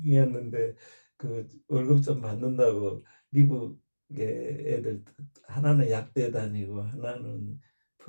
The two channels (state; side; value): inverted; both; correlation -1.00